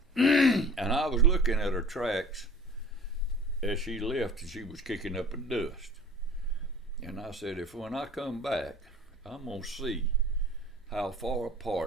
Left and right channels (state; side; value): normal; both; correlation 0.43